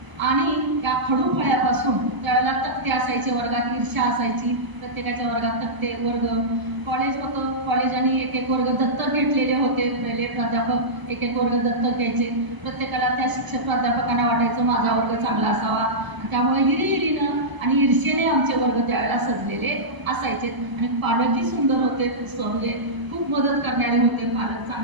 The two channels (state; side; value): late; left; 1.0 ms